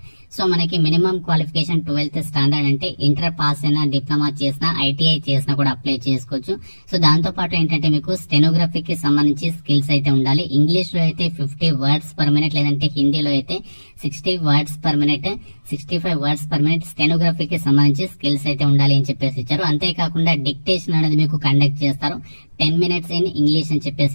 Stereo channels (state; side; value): inverted; both; correlation -1.00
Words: సో మనకి మినిమం క్వాలిఫికేషన్ 12th స్టాండర్డ్ అంటే ఇంటర్ పాస్ అయినా, డిప్లొమా చేసినా, ఐటీఐ చేసినా కూడా అప్లై చేసుకోవచ్చు. సో దాంతో పాటు ఏంటంటే మీకు స్టెనోగ్రఫీకి సంబంధించి స్కిల్స్ అయితే ఉండాలి. ఇంగ్లీష్ లో అయితే 50 వర్డ్స్ పర్ మినిట్, లేదంటే హిందీలో అయితే 60 words per minute, 65 words per minute స్టెనోగ్రఫీకి సంబంధించి స్కిల్స్ అయితే ఉండాలి అని చెప్పేసి ఇచ్చారు. అంతేకాకుండా డిక్టేషన్ అనేది మీకు కండక్ట్ చేస్తారు. 10 minutes ఇన్ ఇంగ్లీష్ అని